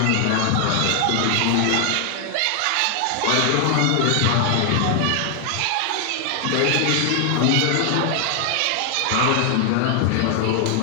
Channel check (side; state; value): both; different; correlation 0.00